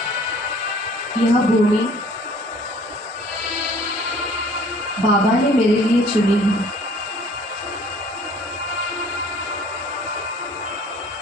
यह भूमि बाबा ने मेरे लिए चुनी है।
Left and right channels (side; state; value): both; normal; correlation 0.53